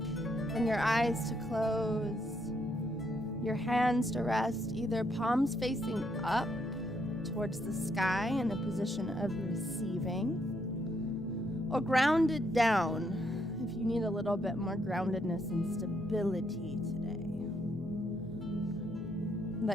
Bring your eyes to close, your hands to rest, either palms facing up towards the sky in a position of receiving, or grounded down if you need a little bit more groundedness and stability today.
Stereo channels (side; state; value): both; normal; correlation 0.75